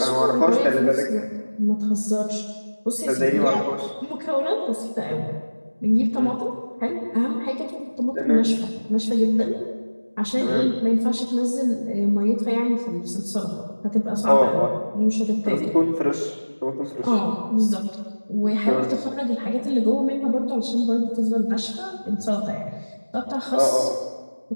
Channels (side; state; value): both; inverted; correlation -1.00